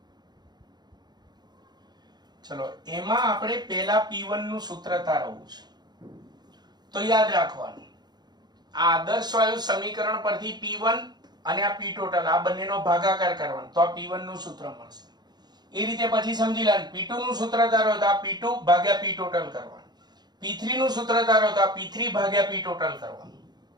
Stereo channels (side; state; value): left; late; 0.20 ms